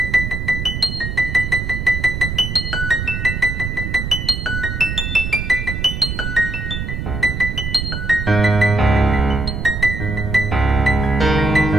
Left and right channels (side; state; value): right; noise; rumble, 4 dB below the sound